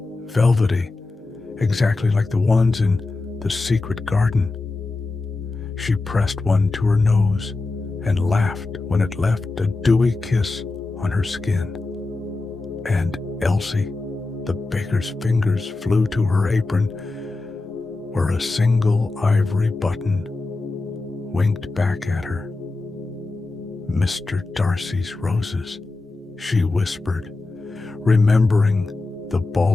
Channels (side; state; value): right; quieter; 3.4 dB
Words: velvety, exactly like the ones in the secret garden. She pressed one to her nose and laughed when it left a dewy kiss on her skin. And Elsie, the baker's fingers flew to her apron, where a single ivory button winked back at her. "Mr. Darcy's roses," she whispered, remembering the